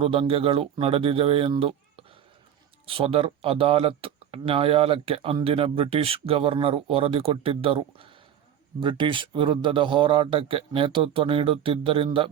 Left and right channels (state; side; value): quieter; left; 9.5 dB